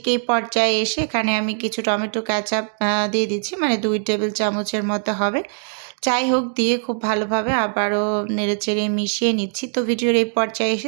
এই পর্যায়ে এসে এখানে আমি কিছু টমেটো কেচাপ দিয়ে দিচ্ছি, মানে 2 টেবিল চামচের মতো হবে। যাই হোক, দিয়ে খুব ভালোভাবে আবারও নেড়েচেড়ে মিশিয়ে নিচ্ছি। তো ভিডিওর এই পর্যায়ে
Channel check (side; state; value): left; silent; digital silence